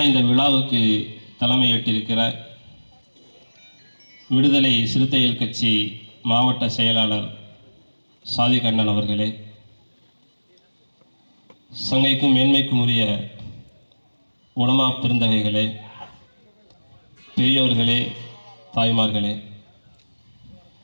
இந்த விழாவுக்கு தலைமையேற்றிருக்கிற விடுதலை சிறுத்தைகள் கட்சி மாவட்ட செயலாளர் சாதிக் அண்ணன் அவர்களே, சங்கைக்கும் மேன்மைக்கும் உரிய உலமா பெருந்தகைகளே, பெரியோர்களே, தாய்மார்களே,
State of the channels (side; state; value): both; inverted; correlation -1.00